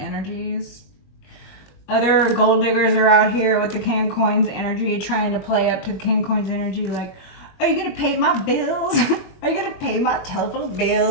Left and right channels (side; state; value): right; late; 21 ms